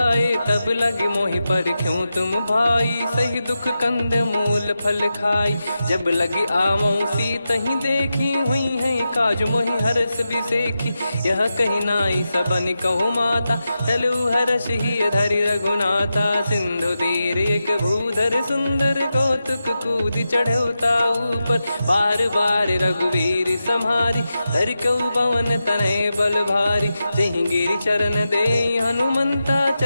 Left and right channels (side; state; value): both; inverted; correlation -0.90